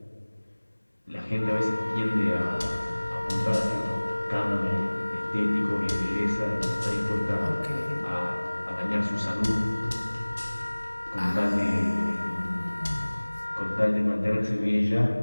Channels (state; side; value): inverted; both; correlation -1.00